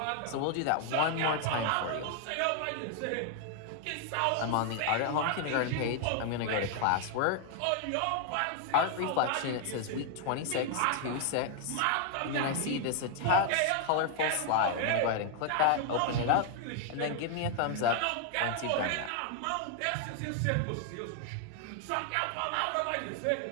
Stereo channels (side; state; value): both; different; correlation 0.00